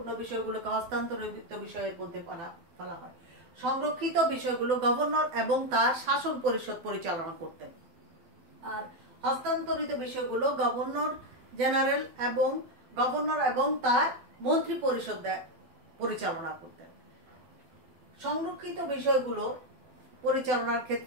বিষয়গুলোকে হস্তান্তরিত বিষয়ের মধ্যে ফেলা হয়। সংরক্ষিত বিষয়গুলো গভর্নর এবং তার শাসন পরিষদ পরিচালনা করতেন, আর হস্তান্তরিত বিষয়গুলো গভর্নর জেনারেল এবং তার মন্ত্রী পরিষদ পরিচালনা করতেন। সংরক্ষিত বিষয়গুলো পরিচালনার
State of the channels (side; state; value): left; late; 12 ms